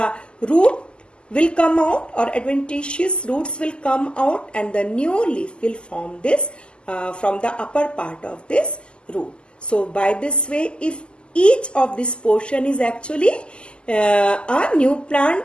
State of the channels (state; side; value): late; right; 0.050 ms